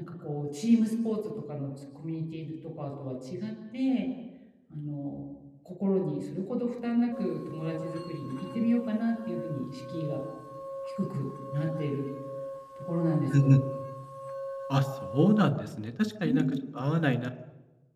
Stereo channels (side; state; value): both; identical; correlation 1.00